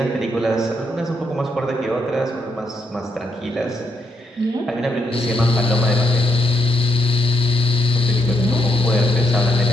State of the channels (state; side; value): normal; both; correlation 0.78